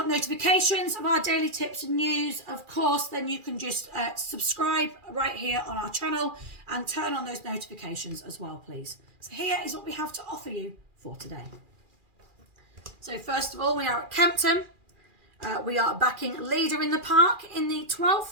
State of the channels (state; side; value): late; left; 2.4 ms